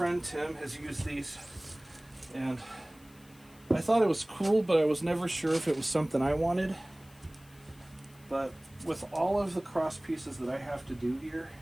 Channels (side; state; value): left; noise; hiss, 26 dB below the sound